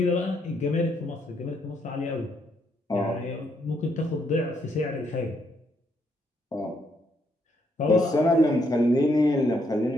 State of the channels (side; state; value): both; normal; correlation 0.74